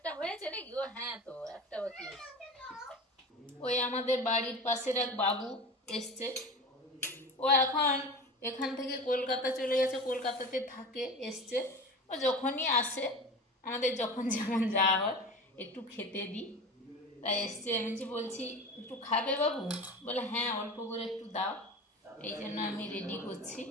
হয়েছে নাকি? ও হ্যাঁ, তো একটা বাকি আছে। ওই আমাদের বাড়ির পাশের এক বাবু এসছে, ও এখন এখান থেকে কলকাতা চলে গেছে, কলকাতাতে থাকে, এসছে। ও যখনই আসে, আমাদের যখন যেমন যাওয়া হয়, একটু খেতে দিই, তাই এসছে। আমি বলছি একটু খাবে বাবু? বলে হ্যাঁ অল্প করে একটু দাও। এই জন্য আমি রেডি করছি।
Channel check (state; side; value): normal; both; correlation 0.32